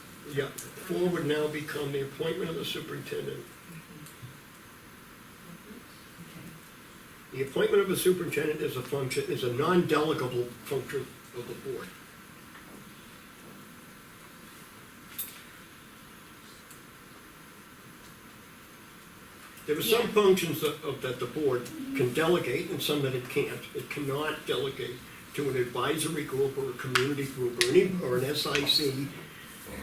Yeah, 4 would now become the appointment of the superintendent. Okay. The appointment of a superintendent is a non-delegable function of the board. There are some Yeah. functions that the board can delegate and some that it can't. It cannot delegate to an advisory group or a community group or an SIC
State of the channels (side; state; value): both; identical; correlation 1.00